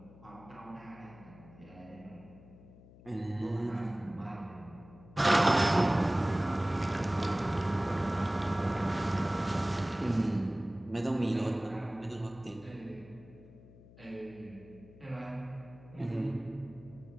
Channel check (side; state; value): left; noise; hum, 21 dB below the sound